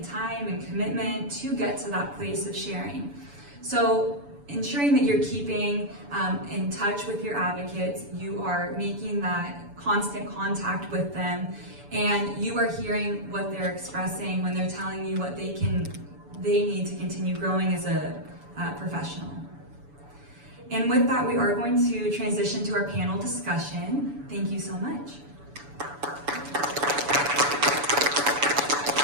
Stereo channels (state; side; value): late; left; 7.0 ms